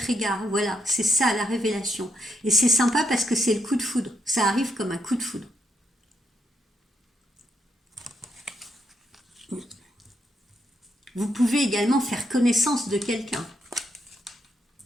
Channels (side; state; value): both; normal; correlation 0.79